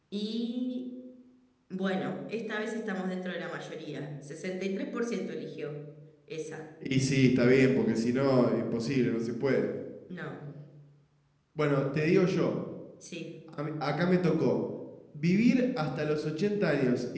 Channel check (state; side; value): identical; both; correlation 1.00